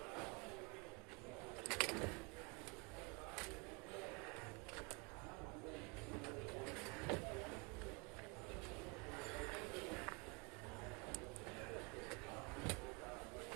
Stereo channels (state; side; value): quieter; left; 30.7 dB